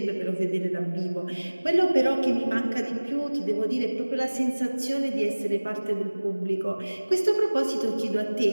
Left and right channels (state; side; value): inverted; both; correlation -1.00